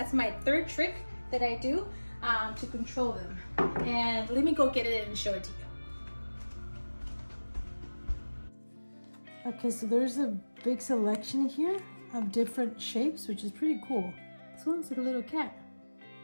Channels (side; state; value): both; inverted; correlation -1.00